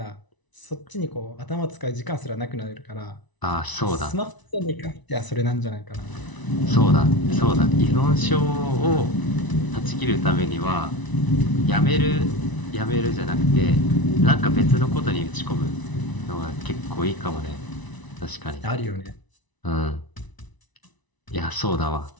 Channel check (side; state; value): right; late; 1.0 ms